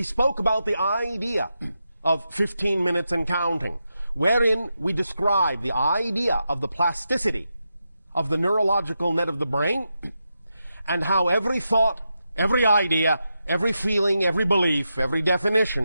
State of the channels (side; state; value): both; inverted; correlation -0.87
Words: spoke about the idea of 15 minutes and counting, wherein we described the idea of the plasticity of the neurological net of the brain, and how every thought, every idea, every feeling, every belief, every